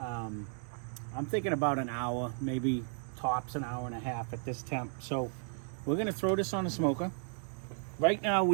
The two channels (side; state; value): left; silent; 55 dB below the other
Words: thinking about an hour, maybe tops an hour and a half at this temp. So we're going to throw this on the smoker. Right now